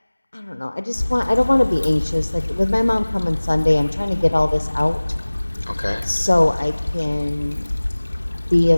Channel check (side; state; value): both; inverted; correlation -1.00